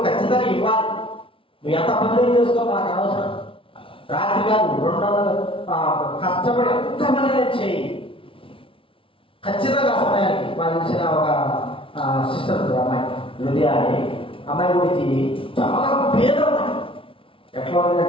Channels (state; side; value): late; right; 0.26 ms